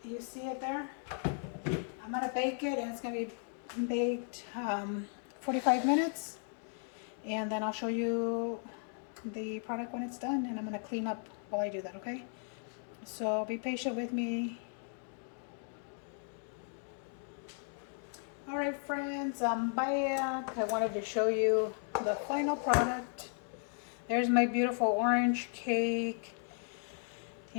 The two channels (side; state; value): right; silent; 54 dB below the other